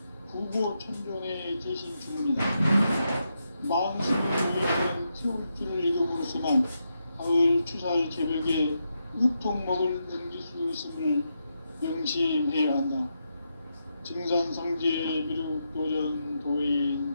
부고천존의 대신 주문이다. 만수를 보이는 태울주를 읽음으로써만 가을 추살 개벽의 으통먹을 넘길 수 있음을 명심해야 한다. 증산상제 미륵도전 도인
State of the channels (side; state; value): both; inverted; correlation -0.84